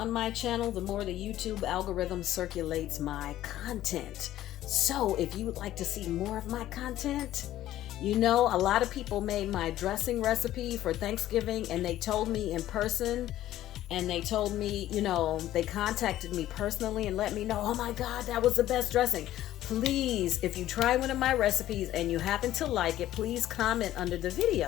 my channel, the more the YouTube algorithm circulates my content. So if you would like to see more of my content, you know, a lot of people made my dressing recipe for Thanksgiving, and they told me in person, and they told me, you know, they contacted me personally and let me know, oh my God, that was the best dressing. Please, if you try one of my recipes and you happen to like it, please comment under the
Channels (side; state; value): right; quieter; 13.6 dB